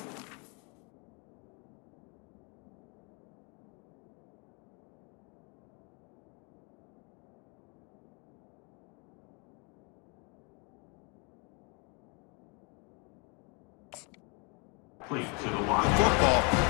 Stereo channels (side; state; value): right; quieter; 33.2 dB